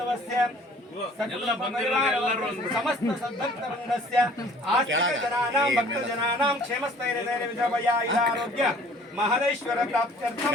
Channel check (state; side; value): normal; both; correlation 0.53